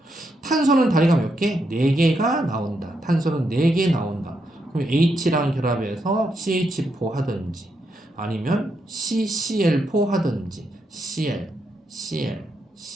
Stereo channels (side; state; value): both; normal; correlation 0.81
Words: 탄소는 다리가 몇 개? 4개가 나온다. 탄소는 4개 나온다. 그럼 H랑 결합해서 CH4 하든지, 아니면 CCl4 하든지, Cl, Cl,